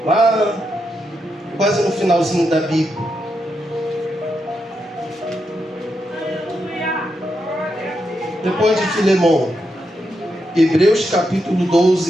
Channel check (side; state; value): both; normal; correlation 0.83